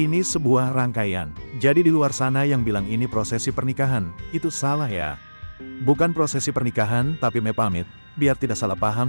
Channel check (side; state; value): both; inverted; correlation -1.00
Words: sebuah rangkaian. Jadi di luar sana yang bilang ini prosesi pernikahan, itu salah ya. Bukan prosesi pernikahan tapi pamit, biar tidak salah